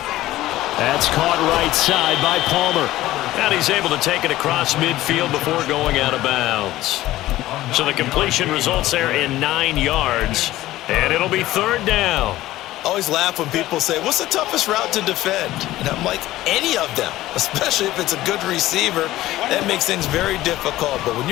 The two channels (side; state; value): right; quieter; 15.8 dB